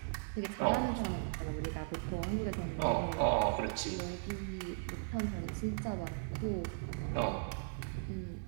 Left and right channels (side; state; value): left; silent; 53 dB below the other